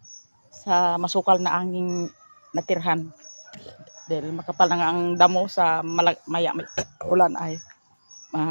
sa masukal na anging natirhan. Dahil makapal na nga ang damo sa maya may ulan ay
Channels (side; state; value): both; inverted; correlation -1.00